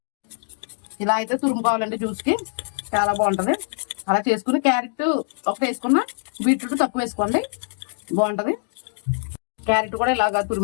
ఇలా అయితే తురుముకోవాలండి. జ్యూస్కి చాలా బాగుంటుంది. అలా చేసుకుని క్యారెట్ ఒకటి వేసుకున్న, బీట్రూట్ తక్కువ వేసుకోండి, బాగుంటుంది. క్యారెట్ కూడా ఇలాగా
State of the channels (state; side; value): silent; right; 61 dB below the other